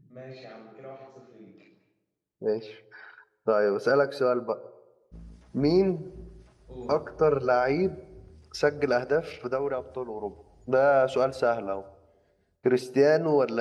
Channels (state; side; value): identical; both; correlation 1.00